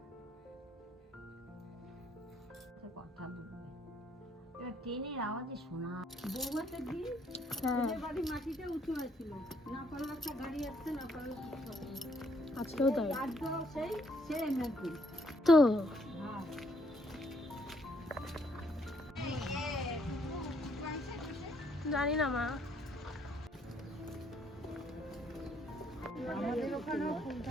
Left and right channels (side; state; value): both; normal; correlation 0.70